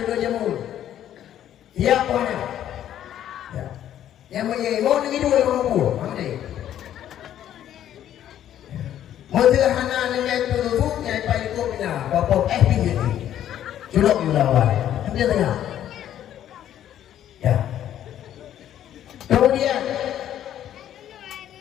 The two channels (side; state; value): right; quieter; 11.2 dB